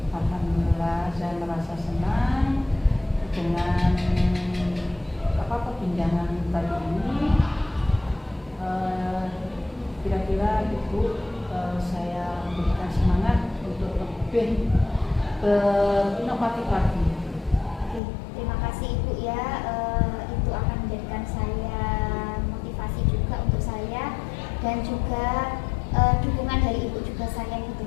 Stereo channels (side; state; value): right; drops out; at 18.0 s